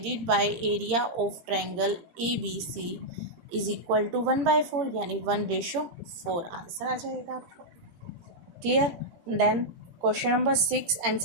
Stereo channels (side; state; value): left; late; 17 ms